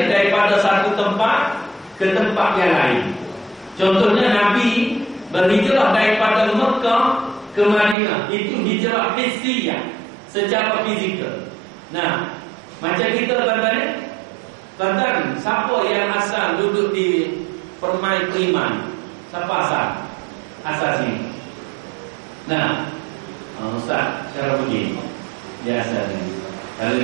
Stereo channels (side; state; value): left; drops out; at 8.0 s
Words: daripada satu tempat ke tempat yang lain. Contohnya Nabi berhijrah daripada Mekah ke Madinah. Itu hijrah hissiyah, secara fizikal. Macam kita tuan-tuan, siapa yang asal duduk di Permai Priman? Siapa asal? Asal sini. Ustaz, cara begini. Dia asal sini. Kalau